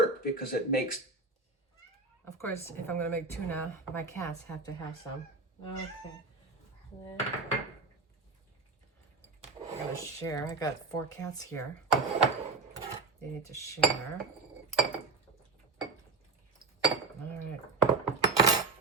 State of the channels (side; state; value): left; quieter; 3.9 dB